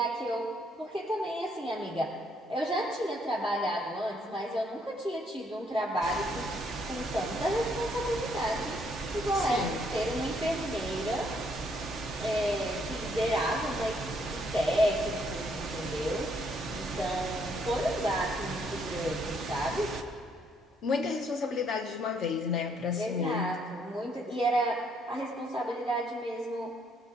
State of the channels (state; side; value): normal; both; correlation 0.70